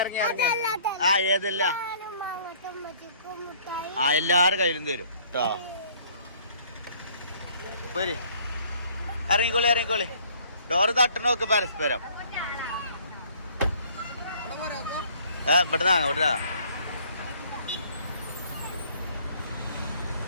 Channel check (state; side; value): inverted; both; correlation -0.57